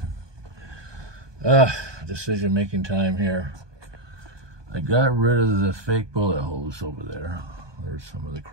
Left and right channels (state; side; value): late; left; 1.2 ms